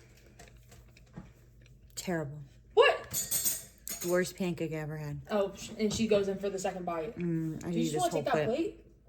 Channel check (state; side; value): identical; both; correlation 1.00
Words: Terrible. What? Worst pancake I ever had. Oh, and she goes in for the second bite. I Do you need just this want to whole take that plate. plate?